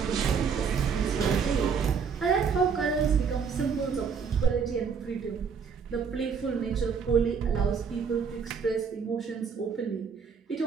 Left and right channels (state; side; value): quieter; left; 6.2 dB